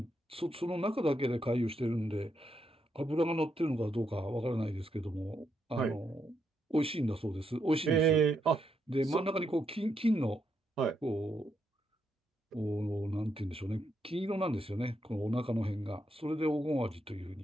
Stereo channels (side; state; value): both; normal; correlation 0.80